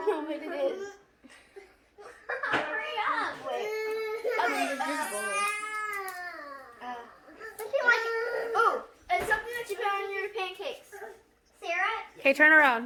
know what it is. Hurry up! Wait. Oh, it's something that you put on your pancakes. Sarah? Okay, turn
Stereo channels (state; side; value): identical; both; correlation 1.00